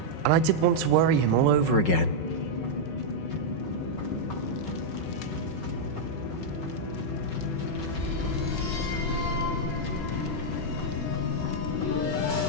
And I didn't want to worry him all over again.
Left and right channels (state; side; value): late; right; 5.4 ms